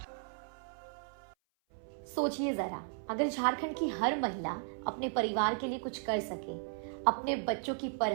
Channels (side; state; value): left; silent; 54 dB below the other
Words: सोचिए जरा, अगर झारखंड की हर महिला अपने परिवार के लिए कुछ कर सके, अपने बच्चों की